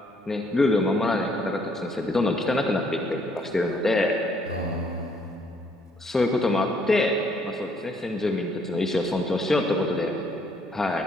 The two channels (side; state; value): both; normal; correlation 0.67